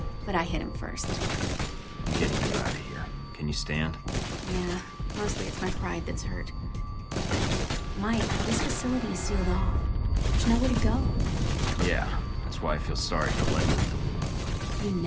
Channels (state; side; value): identical; both; correlation 1.00